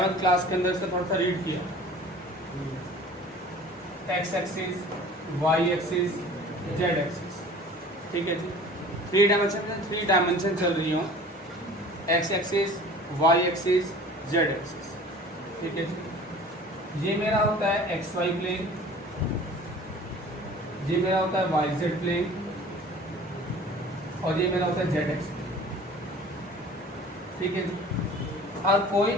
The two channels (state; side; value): normal; both; correlation 0.44